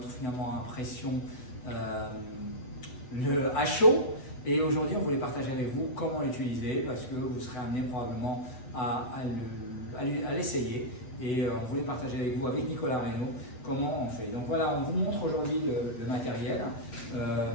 finalement impression à chaud. Et aujourd'hui, on voulait partager avec vous comment l'utiliser parce que vous serez amené probablement à l'essayer. Et on voulait partager avec vous, avec Nicolas Reynaud, comment on fait. Donc voilà, on vous montre aujourd'hui le matériel.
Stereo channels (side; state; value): right; late; 7.9 ms